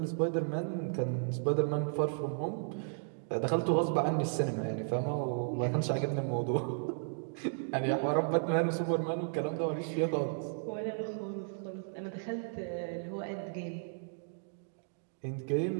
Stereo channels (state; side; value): silent; left; digital silence